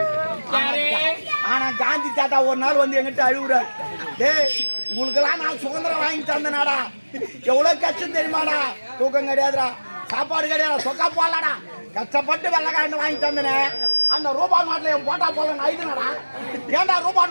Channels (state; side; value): inverted; both; correlation -1.00